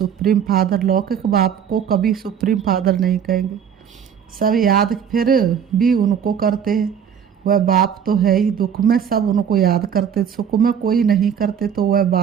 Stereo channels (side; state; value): left; quieter; 8.1 dB